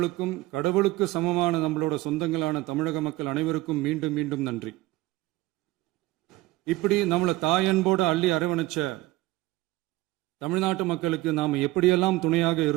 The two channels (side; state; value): left; quieter; 17.9 dB